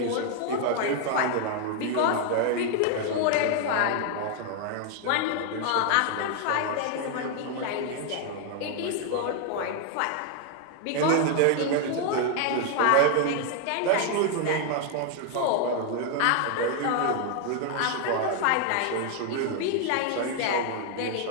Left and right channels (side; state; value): both; different; correlation 0.00